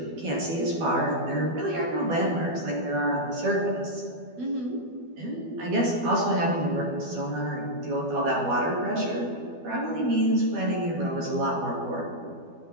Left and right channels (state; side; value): late; left; 12 ms